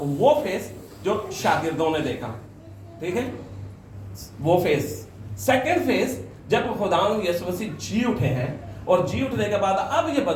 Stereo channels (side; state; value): both; identical; correlation 1.00